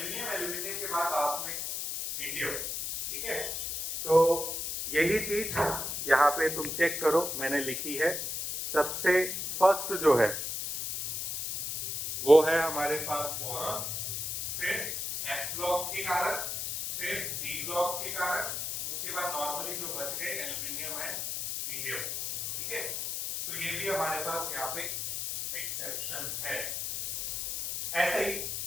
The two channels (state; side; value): noise; left; hiss, 3 dB below the sound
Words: एल्यूमिनियम के बाद लास्ट में इंडियम। ठीक है, सो यही चीज यहाँ पे तुम चेक करो, मैंने लिखी है। सबसे फर्स्ट जो है वो है हमारे पास बोरॉन, फिर एफ ब्लॉक के कारण, फिर डी ब्लॉक के कारण, उसके बाद नॉर्मली जो बच गए एल्यूमिनियम है, इंडियम। ठीक है, सो ये भी हमारे पास यहाँ पे एक्सेप्शन है। ऐसे ही